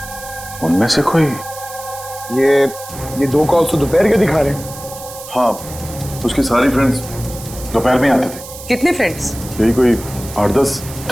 उनमें से कोई? ये 2 कॉल्स तो दोपहर के दिखा रहे हैं। हाँ, उसके सारी फ्रेंड्स दोपहर में आते थे। कितने फ्रेंड्स? यही कोई 8-10।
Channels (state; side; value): noise; right; hiss, 14 dB below the sound